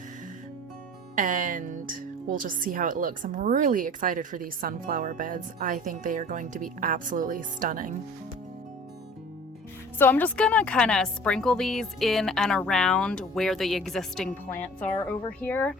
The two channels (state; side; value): normal; both; correlation 0.45